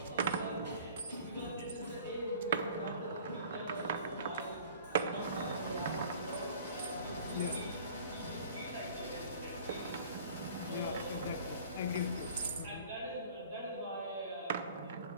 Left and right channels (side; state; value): both; inverted; correlation -0.48